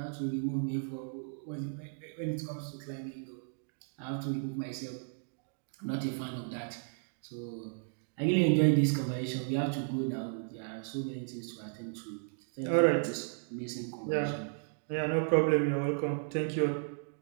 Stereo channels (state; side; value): silent; left; digital silence